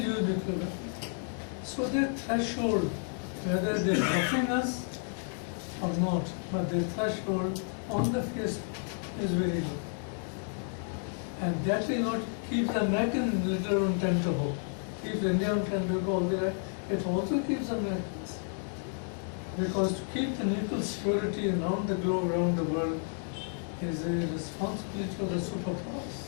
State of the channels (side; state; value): right; silent; 56 dB below the other